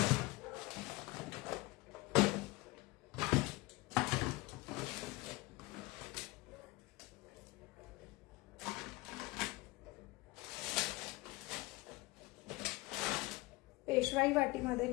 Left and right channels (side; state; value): right; quieter; 21.9 dB